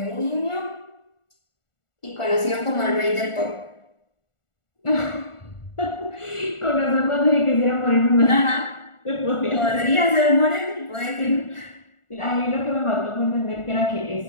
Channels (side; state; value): right; late; 1.4 ms